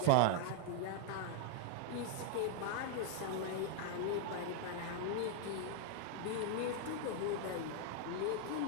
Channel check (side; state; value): both; different; correlation 0.00